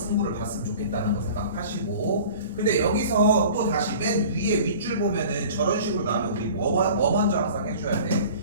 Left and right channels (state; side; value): inverted; both; correlation -0.43